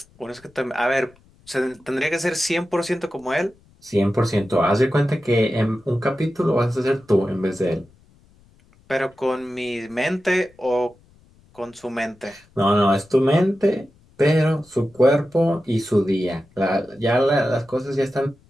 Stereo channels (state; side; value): noise; left; rumble, 30 dB below the sound